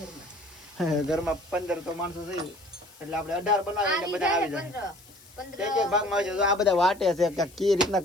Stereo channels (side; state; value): left; noise; hiss, 24 dB below the sound